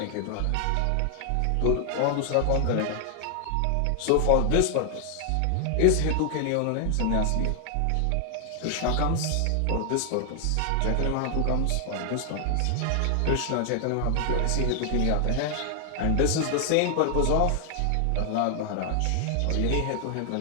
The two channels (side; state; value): both; different; correlation 0.00